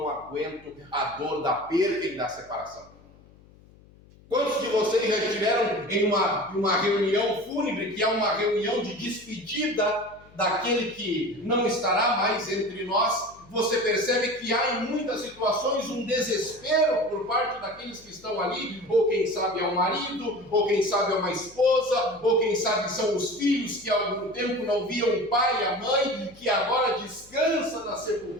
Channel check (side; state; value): left; noise; hum, 25 dB below the sound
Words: aguento a dor da perda e da separação. Quantos de vocês já estiveram em uma reunião fúnebre, que é uma reunião de despedida daquele que não estará mais entre nós? Você percebe que há em muitas situações um desespero por parte daqueles que estão ali, ou quem sabe é o marido, ou quem sabe é uma esposa, ou quem sabe são os filhos que há algum tempo não viam o pai e a mãe, que agora descansa na